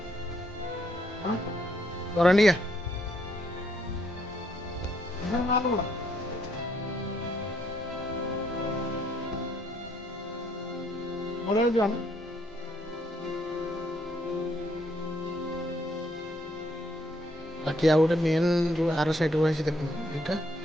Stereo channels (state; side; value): normal; both; correlation 0.71